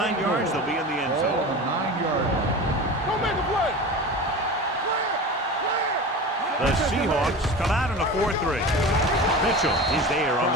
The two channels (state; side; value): normal; both; correlation 0.31